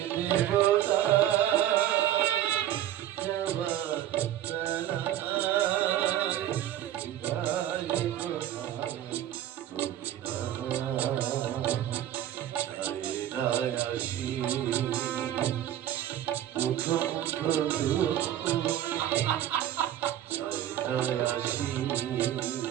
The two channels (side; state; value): left; quieter; 12.0 dB